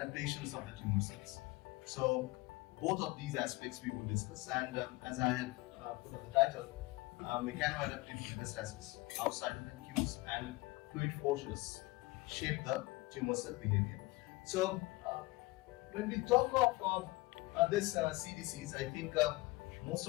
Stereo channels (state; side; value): quieter; right; 22.1 dB